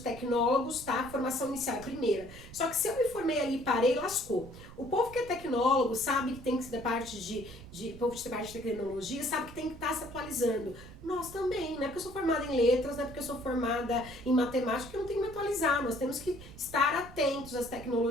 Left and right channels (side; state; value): right; noise; rumble, 16 dB below the sound